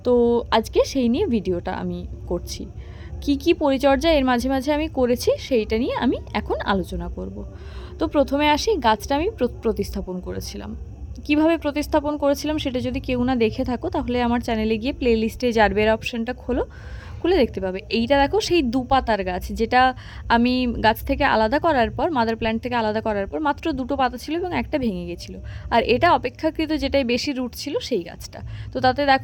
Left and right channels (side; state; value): both; identical; correlation 1.00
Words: তো আজকে সেই নিয়ে ভিডিওটা আমি করছি। কি পরিচর্যা এর মাঝে মাঝে আমি করেছি সেইটা নিয়ে আমি এখন আলোচনা করব। তো প্রথমে আসি, গাছটা আমি প্রতিস্থাপন করেছিলাম। কিভাবে প্রতিস্থাপন করেছিলাম সেটা যদি কেউ না দেখে থাকো তাহলে আমার চ্যানেলে গিয়ে প্লে লিস্টে জারবেরা অপশানটা খুলে দেখতে পাবে। এইটা দেখো সেই দুপাতার গাছ, যেটা আমি গাছ থেকে আলাদা করার পর, মাদার প্ল্যান্ট থেকে আলাদা করার পর মাত্র দুটো পাতা ছিল এবং একটা ভেঙে গেছিলো। আর এটা অপেক্ষাকৃত যেটাই বেশি রুট ছিল সেই গাছটা। তো তাতে